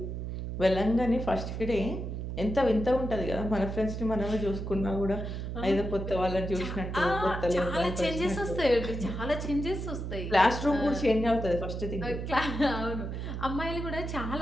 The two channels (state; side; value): noise; right; hum, 5 dB below the sound